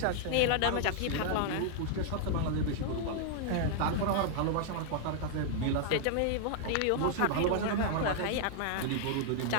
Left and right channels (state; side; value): different; both; correlation -0.01